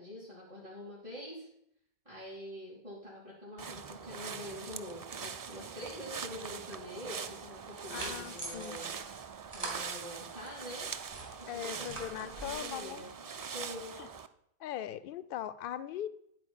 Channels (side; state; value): right; late; 1.7 ms